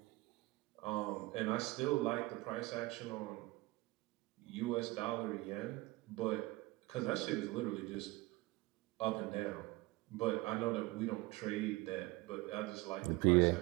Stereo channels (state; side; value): quieter; left; 21.5 dB